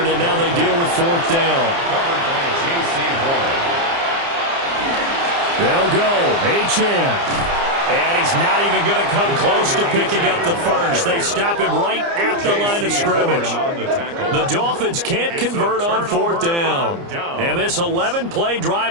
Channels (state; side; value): late; left; 29 ms